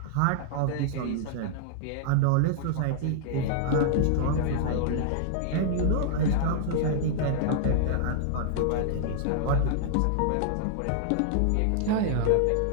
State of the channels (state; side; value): different; both; correlation -0.01